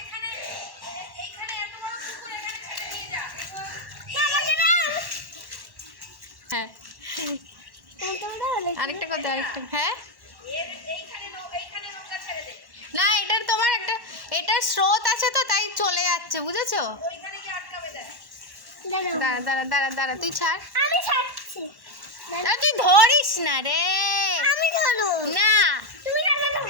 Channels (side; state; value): left; late; 1.1 ms